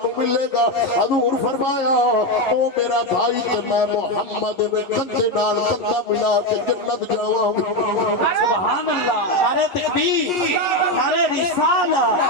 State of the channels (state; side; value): late; right; 11 ms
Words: ملے گا حضور فرمایا او میرا بھائی تے میں محمد میں کندے نال کندہ ملا کے جنت جاواں سبحان اللہ نعرہ تکبیر نعرہ رسالہ